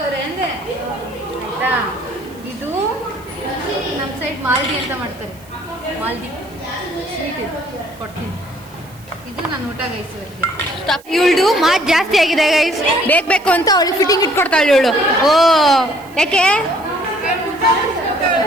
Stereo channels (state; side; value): noise; right; hiss, 25 dB below the sound